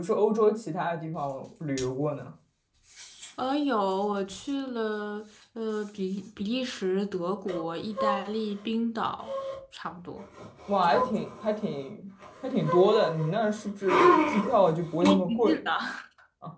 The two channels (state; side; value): identical; both; correlation 1.00